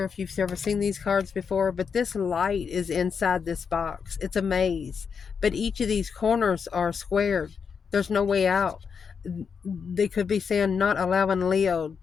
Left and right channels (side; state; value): right; quieter; 6.2 dB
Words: if you've ever seen these cards before, but this light is inside this box. It's a maze. But each of these corners are squared. There's no way out. They could be saying not allowing Leo